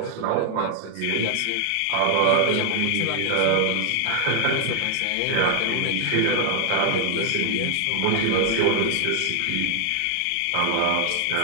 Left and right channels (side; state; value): both; different; correlation 0.00